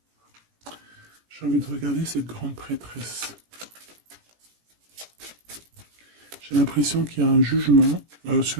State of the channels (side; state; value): left; late; 17 ms